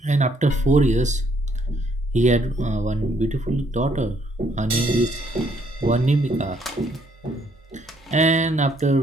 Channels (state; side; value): normal; both; correlation 0.69